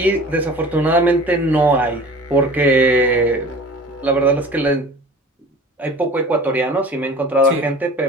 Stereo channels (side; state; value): both; normal; correlation 0.42